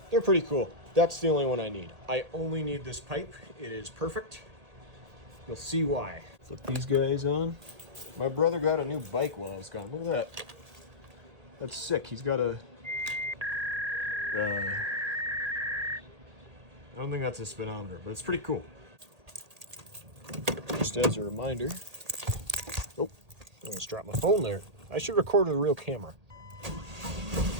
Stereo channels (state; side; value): late; left; 1.8 ms